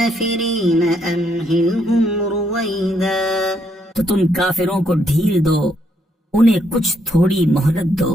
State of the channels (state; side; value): normal; both; correlation 0.74